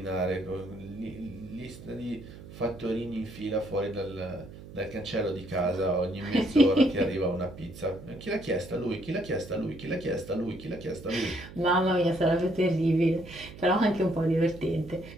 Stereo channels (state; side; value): noise; right; hum, 16 dB below the sound